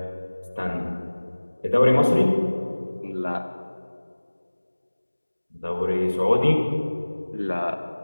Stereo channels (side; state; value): both; inverted; correlation -1.00